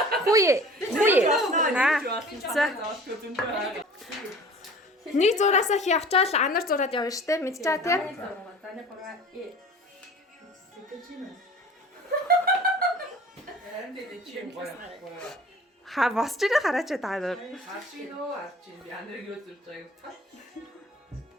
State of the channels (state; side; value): normal; both; correlation 0.44